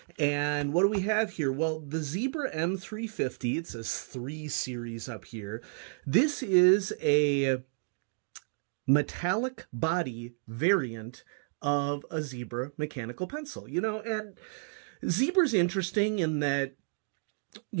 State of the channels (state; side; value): silent; left; digital silence